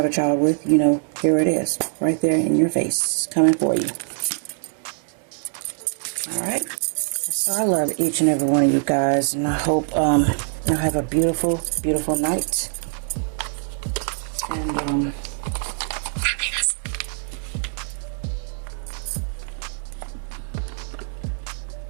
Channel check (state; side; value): silent; left; 56 dB below the other